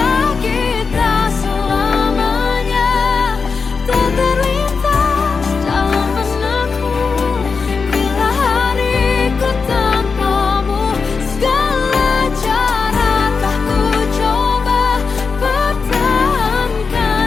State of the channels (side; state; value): right; quieter; 5.0 dB